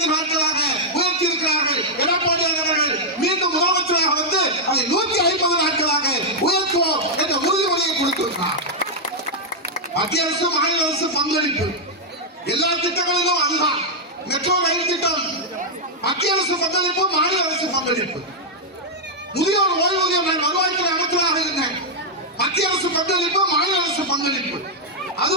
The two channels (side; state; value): both; normal; correlation -0.04